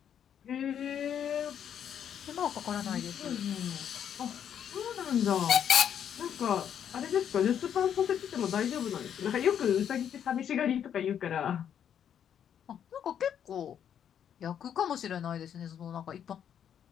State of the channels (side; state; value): right; quieter; 9.0 dB